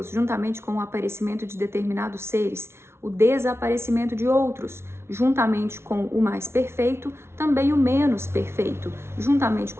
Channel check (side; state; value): left; late; 0.12 ms